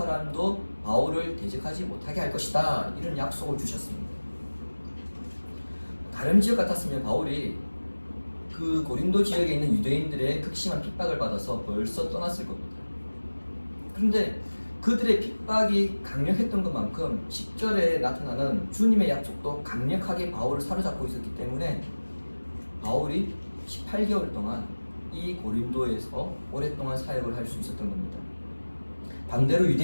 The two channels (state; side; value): inverted; both; correlation -1.00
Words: 바울을 대적하지 못하게 할 것이다. 이런 약속을 주셨습니다. 다른 지역 같았으면 바울이 그 고린도 지역에 있는 유대인들의 극심한 핍박을 받아서 벌써 떠났을 겁니다. 그런데 그들의 핍박이 강력했던 것만큼 10절에 나타나는 주님의 약속도 강력하게 바울을 사로잡고 있었기 때문에 바울이 18개월 동안 이 고린도에서 오랫동안 사역을 할 수 있었던 겁니다. 반대로